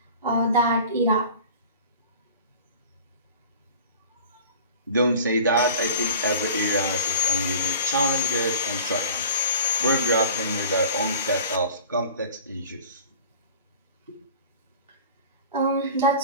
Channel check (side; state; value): both; inverted; correlation -0.40